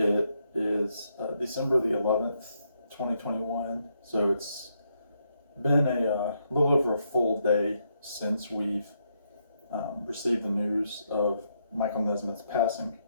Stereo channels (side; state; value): both; inverted; correlation -0.78